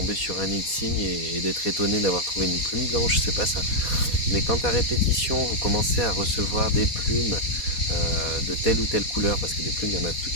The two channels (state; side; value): late; right; 4.2 ms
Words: sur un nid de cygne et d'être étonné d'avoir trouvé une plume blanche, c'est pas ça. Mais quand à répétition vous commencez à recevoir des plumes de telle ou telle couleur, parce que des plumes il y en a de